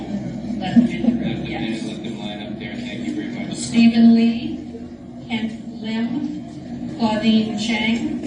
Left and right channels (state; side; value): identical; both; correlation 1.00